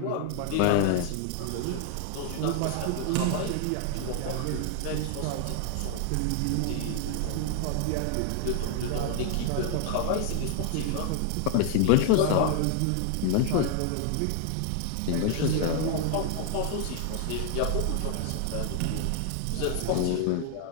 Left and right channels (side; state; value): both; different; correlation 0.00